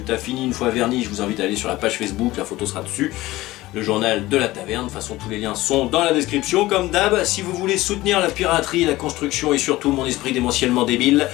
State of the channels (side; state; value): right; quieter; 17.9 dB